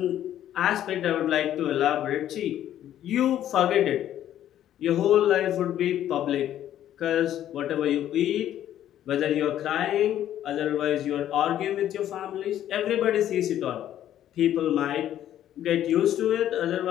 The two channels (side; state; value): right; quieter; 11.6 dB